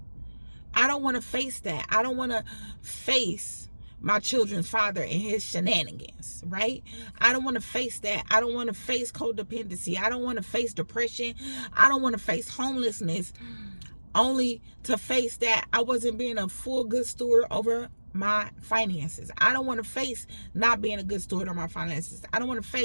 I don't want to face that. I don't want to face my children's father and his shenanigans, right? I don't want to face that. I don't want to face codependency. I don't want to face depression. I don't want to face homelessness, only to face that I wasn't being a full good steward over my finances. I don't want to face not being a good steward of my finances. I don't want to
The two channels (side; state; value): both; inverted; correlation -1.00